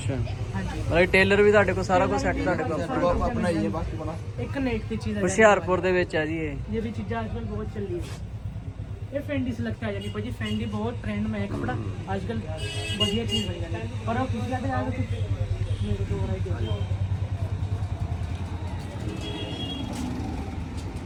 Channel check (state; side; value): identical; both; correlation 1.00